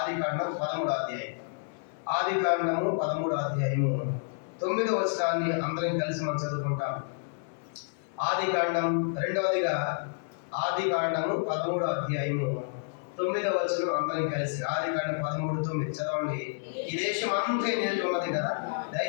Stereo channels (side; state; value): right; silent; 56 dB below the other